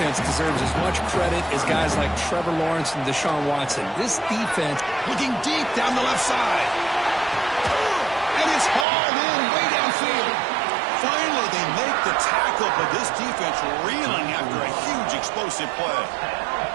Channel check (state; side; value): drops out; left; at 8.8 s